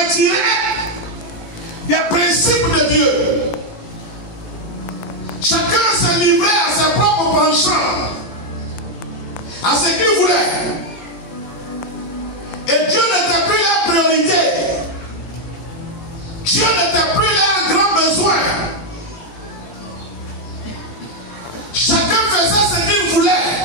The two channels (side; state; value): right; late; 17 ms